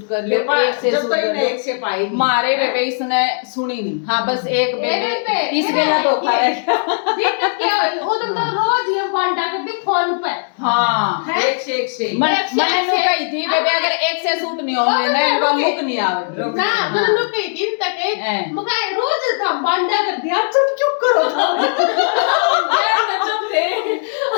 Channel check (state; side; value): silent; right; digital silence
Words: कर लो एक से सूट कर लो एक से पाई मारे बेबे इसने सुनी नहीं हाँ बस एक बेबे इसके ना धोखा है दिक्कत क्या हुई वो तो रोज ये बांटा करती फोन पे हाँ एक से मैंने नु कही थी बेबे अगर एक से सूट नहीं होंगे ना इनका लुक नहीं आवे ना मैंने लोग कई दिन तक हैं। मगर रोज था बांटा कर दिया तुम क्यों करो था